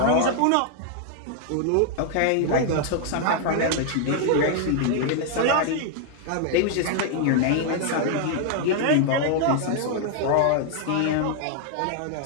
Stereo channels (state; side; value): different; both; correlation 0.00